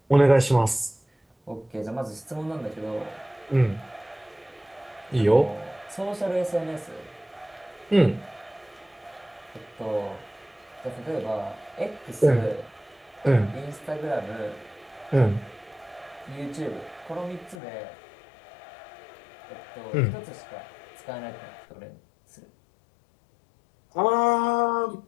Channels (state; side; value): drops out; right; at 17.6 s